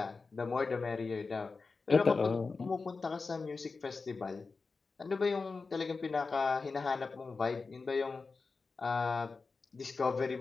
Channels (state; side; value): quieter; right; 4.3 dB